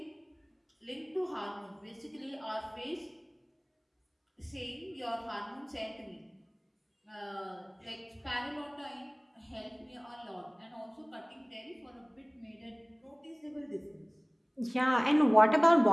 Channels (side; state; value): both; identical; correlation 1.00